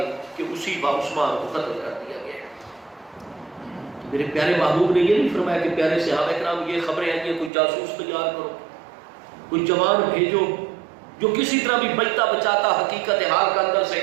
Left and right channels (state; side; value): drops out; left; at 7.5 s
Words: کہ اسی عثمان کو قتل کر دیا گیا۔ میرے پیارے محبوب نے یہ نہیں فرمایا کہ پیارے صحابہ کرام یہ خبریں ہیں کہ کوئی جاسوس تیار کرو، کوئی جوان بھیجو جو کسی طرح بھی بچتا بچاتا حقیقت حال کا اندر سے